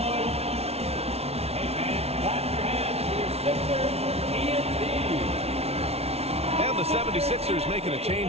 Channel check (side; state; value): left; late; 0.30 ms